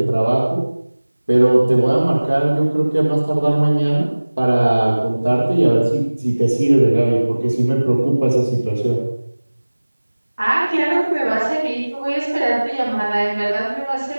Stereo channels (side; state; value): both; inverted; correlation -1.00